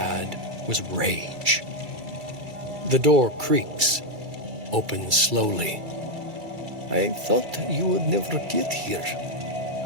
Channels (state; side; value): late; left; 2.3 ms